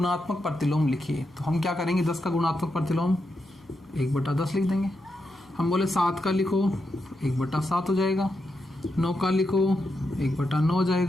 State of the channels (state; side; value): noise; left; hum, 30 dB below the sound